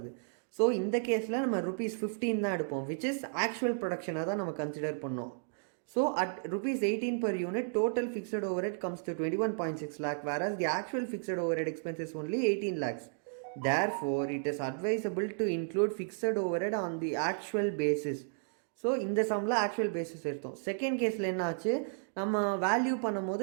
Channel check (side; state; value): left; silent; digital silence